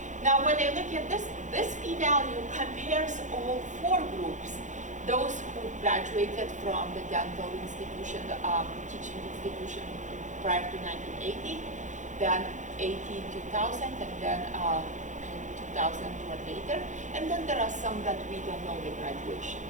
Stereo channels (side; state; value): left; late; 0.36 ms